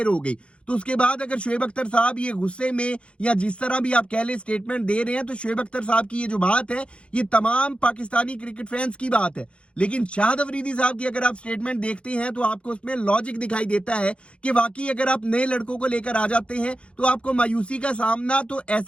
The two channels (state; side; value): late; right; 0.059 ms